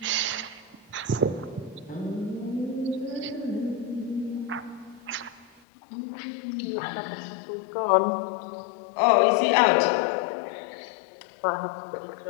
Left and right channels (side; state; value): right; drops out; at 5.6 s